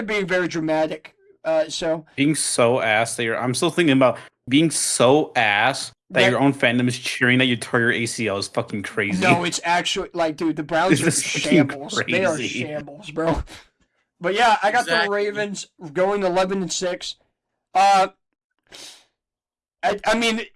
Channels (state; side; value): identical; both; correlation 1.00